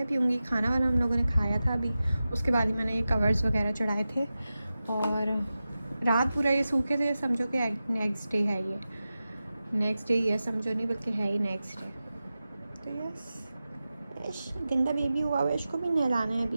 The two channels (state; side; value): inverted; both; correlation -0.94